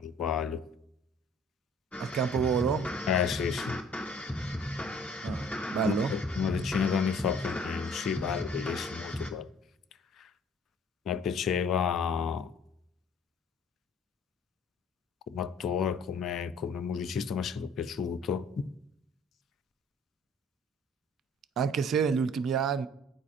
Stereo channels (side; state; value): both; normal; correlation 0.54